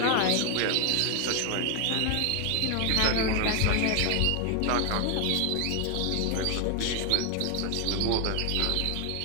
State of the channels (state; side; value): different; both; correlation 0.01